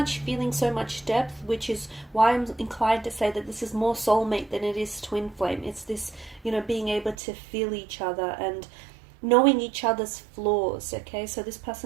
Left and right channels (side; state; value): left; drops out; at 7.2 s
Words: feeling, so much depth, which is why I'm inclined to say that this is more soulmate than it is twin flame. It's this, being able to feel each other and knowing each other's flaws. Okay, so this